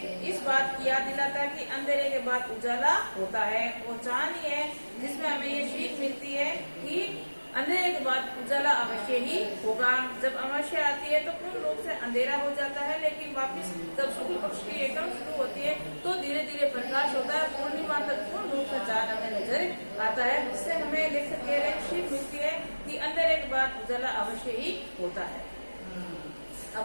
इस बात की याद दिलाता है कि अंधेरे के बाद उजाला होता है। वो चांद ही है जिसमें हमें ये सीख मिलती है कि अंधेरे के बाद उजाला अवश्य ही होगा। जब अमावस्या आती है तो पूर्ण रूप से अंधेरा हो जाता है, लेकिन वापस जब शुक्ल पक्ष की एकदम शुरू होती है तो धीरे धीरे प्रकाश होता है। पूर्णिमा तक पूर्ण रूप से चांद हमें नजर आता है, जिससे हमें लेखक कह रहे सीख मिलती है कि अंधेरे के बाद उजाला अवश्य ही होता है।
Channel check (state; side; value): inverted; both; correlation -1.00